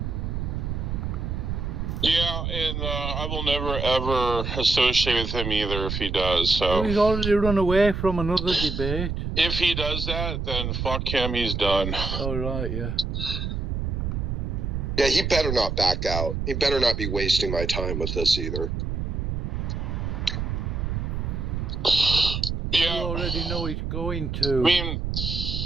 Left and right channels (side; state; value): right; noise; rumble, 2 dB below the sound